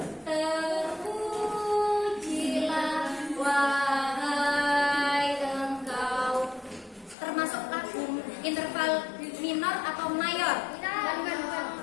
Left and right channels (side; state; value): right; drops out; at 7.2 s